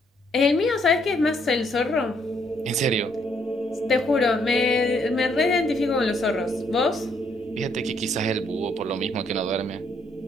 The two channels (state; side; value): normal; both; correlation 0.70